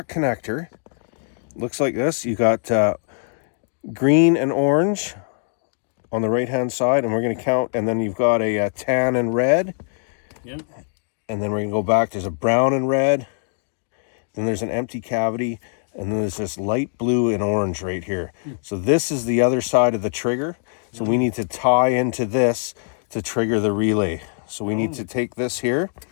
connector. Looks like this. You got green and orange on the right hand side, and we're going to count, and then you've got a tan and red. Yeah. And then we're going to go back. There's a brown and red. Then there's an empty cavity, and then there's this light blue and orange right here. So this is the other side of the trigger. So we need to tie into this to trigger the relay. So we need to take this here,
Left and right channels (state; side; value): silent; right; digital silence